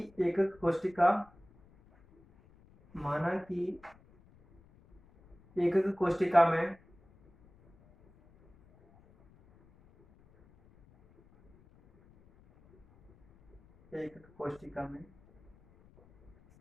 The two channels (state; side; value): noise; left; rumble, 28 dB below the sound